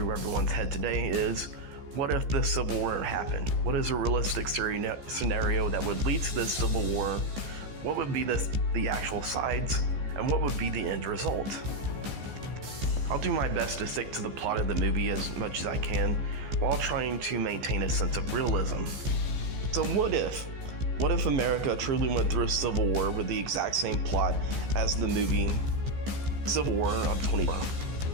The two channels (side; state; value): left; late; 15 ms